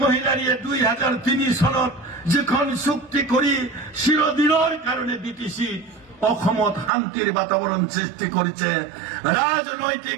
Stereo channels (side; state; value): left; drops out; at 6.9 s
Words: মহিলাৰীয়ে 2003 চনত যিখন চুক্তি কৰি চিৰদিনৰ কাৰণে বিটিচি অসমত শান্তিৰ বাতাবৰণ সৃষ্টি কৰিছে